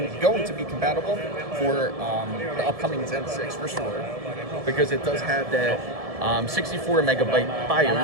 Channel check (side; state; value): left; late; 1.7 ms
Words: to be compatible for the upcoming Zen 6 for sure, because it does have that 64 megabyte